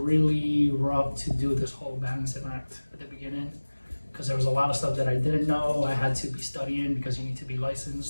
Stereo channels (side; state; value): both; inverted; correlation -1.00